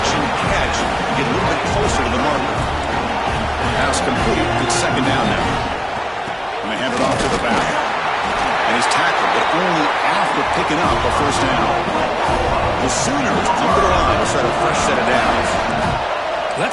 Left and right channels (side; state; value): both; identical; correlation 1.00